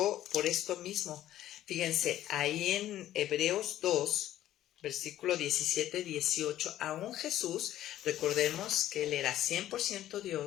por esto mismo. Fíjense, ahí en Hebreos 2, versículo 17-18, aún Jesús, recordemos que él era 100%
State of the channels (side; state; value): right; quieter; 12.9 dB